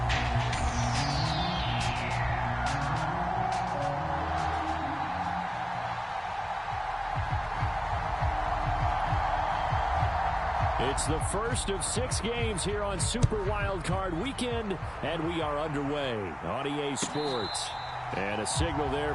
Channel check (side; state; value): both; identical; correlation 1.00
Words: It's the first of 6 games here on Super Wildcard Weekend, and we are underway on EA Sports. And a signal there